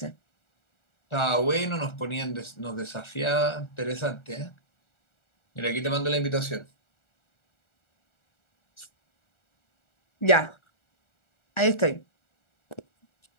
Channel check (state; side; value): late; right; 1.4 ms